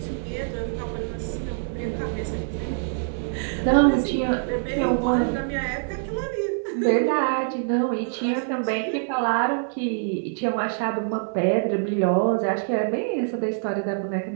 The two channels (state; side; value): silent; left; 62 dB below the other